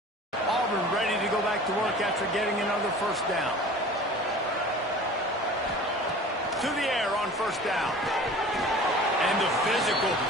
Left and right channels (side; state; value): both; normal; correlation 0.42